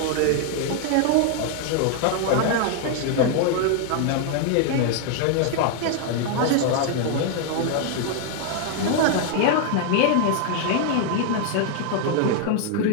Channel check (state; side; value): different; both; correlation 0.00